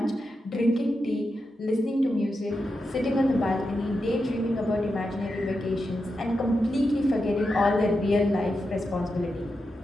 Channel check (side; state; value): both; normal; correlation 0.88